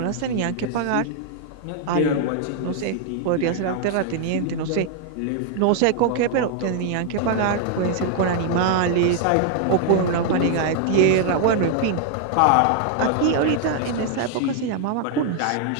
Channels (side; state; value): both; different; correlation 0.00